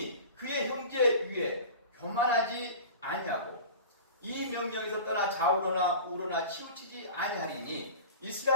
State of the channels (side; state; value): both; inverted; correlation -0.37